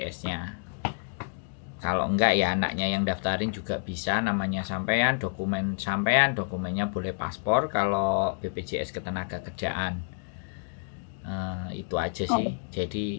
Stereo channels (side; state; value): right; silent; digital silence